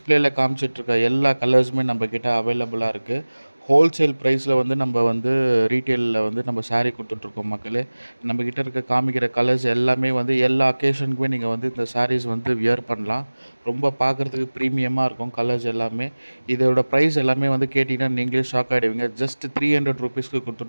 காமிச்சிட்ருக்க எல்லா கலர்ஸுமே நம்மக்கிட்ட அவைலபிளா இருக்கு. ஹோல்சேல் ப்ரைஸில் வந்து நம்ம வந்து ரீட்டெயிலில் வந்து நம்ம சாரீ குடுத்துட்ருக்கோம் மக்களே. நம்மக்கிட்ட இருக்க காமிக்கிற கலர்ஸ் எல்லாமே வந்து எல்லா அக்கேஷனுக்குமே நீங்கள் வந்து இந்த சாரீஸ் வந்து வியர் பண்ணலாம். ரொம்ப பார்க்குறதுக்கு ப்ரீமியமாக இருக்கும் கலர்ஸ் எல்லாமே. இதோட ப்ரைஸ் எல்லாமே வந்து கேட்டிங்கன்னா நீங்களே ஷாக் ஆகிடுவீங்க. ஜஸ்ட் ₹300க்கு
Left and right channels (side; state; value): both; inverted; correlation -1.00